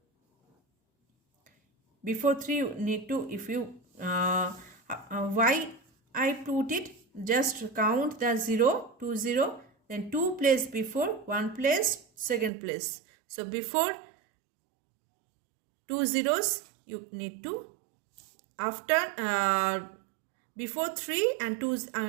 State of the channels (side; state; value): left; drops out; at 12.5 s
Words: Before 3 you need to, if you why I put it, just count the 0, 2 0, then 2 place before, 1 place, second place. So before 2 zeros you need to, after before 3 and 2